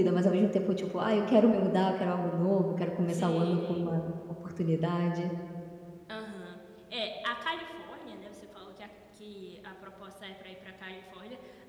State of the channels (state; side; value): identical; both; correlation 1.00